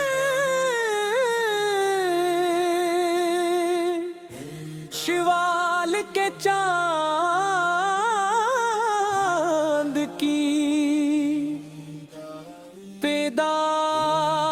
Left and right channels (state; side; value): identical; both; correlation 1.00